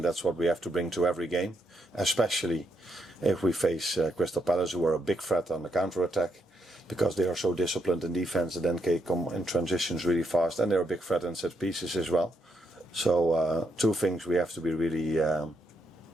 that's what we have to bring to every game, especially if we face Crystal Palace, who are a big threat on the counter-attack, because they are so disciplined in defense and then can come in transitions really fast, and they're a big threat in set pieces as well. So 2 things we have to be really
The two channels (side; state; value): both; normal; correlation 0.78